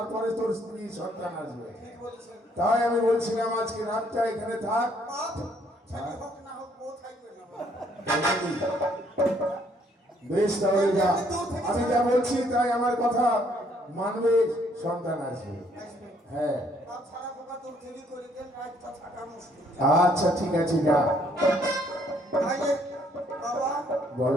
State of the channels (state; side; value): normal; both; correlation 0.66